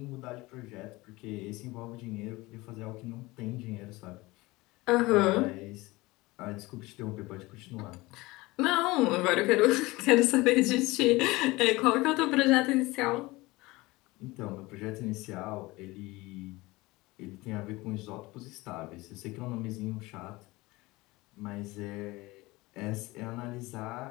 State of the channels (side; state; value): right; quieter; 21.4 dB